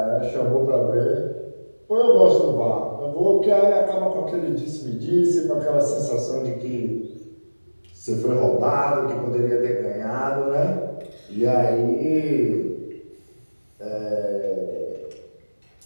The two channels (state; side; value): inverted; both; correlation -1.00